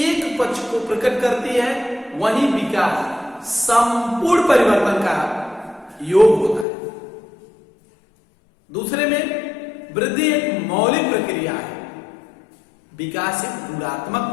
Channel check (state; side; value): drops out; right; at 6.7 s